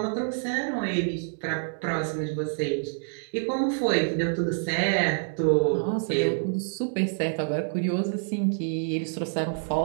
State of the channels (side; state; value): left; silent; digital silence